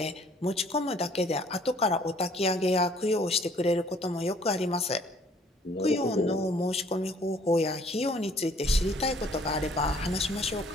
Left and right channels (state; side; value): normal; both; correlation 0.58